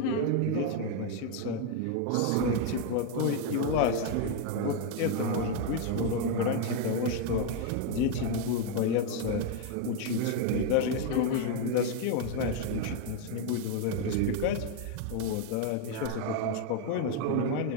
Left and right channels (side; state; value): both; different; correlation 0.01